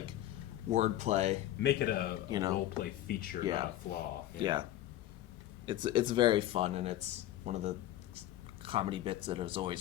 wordplay. Make it a role play feature, not a flaw. Yeah. It's very fun, and it's one of the comedy bits that has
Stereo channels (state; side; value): quieter; right; 13.6 dB